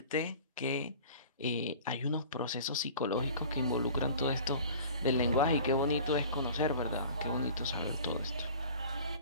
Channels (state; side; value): inverted; both; correlation -0.43